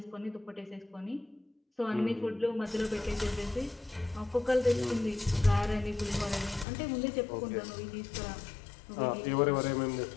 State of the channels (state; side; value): drops out; right; at 6.7 s